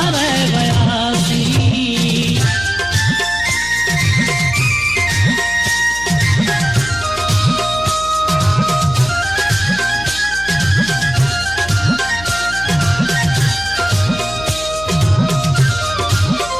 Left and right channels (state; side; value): noise; left; hum, 14 dB below the sound